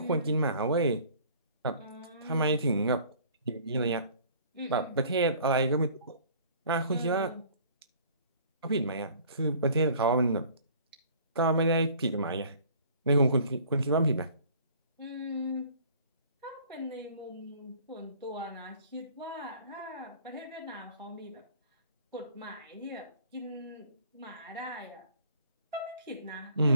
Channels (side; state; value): both; inverted; correlation -0.51